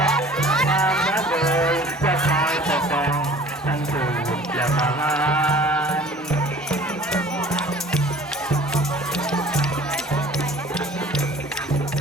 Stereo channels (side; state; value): both; normal; correlation 0.48